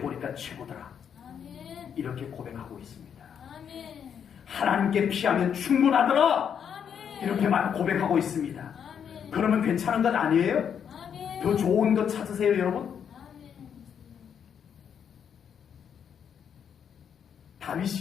최고더라. 아멘. 이렇게 고백하고 있습니다. 아멘. 하나님께 피하면 충분하더라. 아멘. 이렇게만 고백하고 있습니다. 아멘. 그러면 괜찮은 것 아니에요? 아멘. 더 좋은 것 찾으세요, 여러분. 아멘.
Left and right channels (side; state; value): right; quieter; 8.0 dB